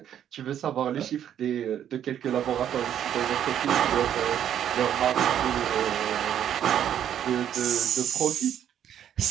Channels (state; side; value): quieter; left; 10.0 dB